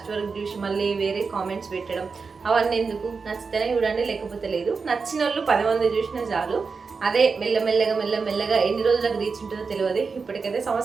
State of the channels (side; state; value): left; quieter; 4.9 dB